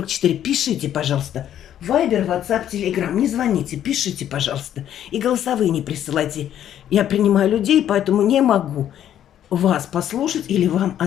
Пишите, пожалуйста. Вайбер, WhatsApp, Telegram. Не звоните, пишите, пожалуйста. И голосовые не присылайте. Я принимаю людей, поэтому не могу вас послушать или вам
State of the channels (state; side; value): quieter; right; 10.7 dB